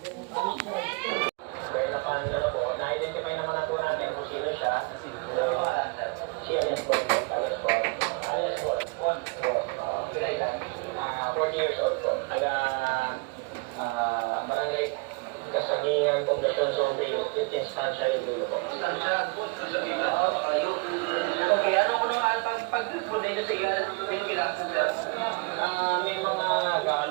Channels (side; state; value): left; quieter; 30.2 dB